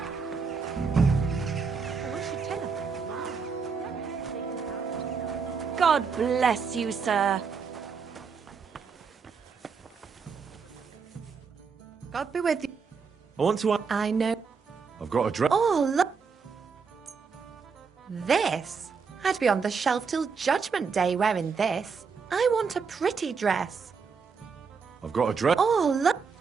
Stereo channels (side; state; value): left; quieter; 5.5 dB